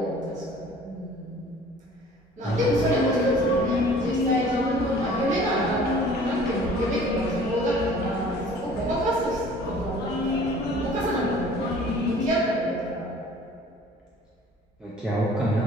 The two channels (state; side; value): normal; both; correlation 0.49